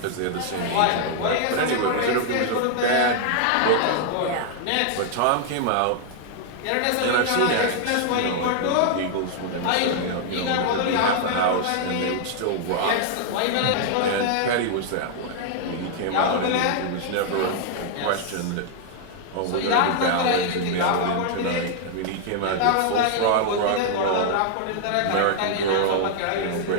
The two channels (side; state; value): both; different; correlation 0.00